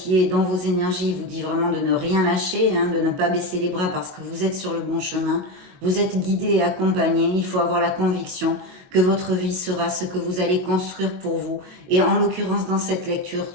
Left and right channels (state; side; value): late; left; 22 ms